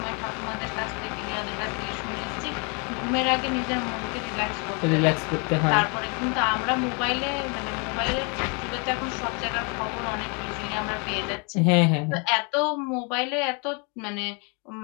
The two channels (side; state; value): right; quieter; 34.4 dB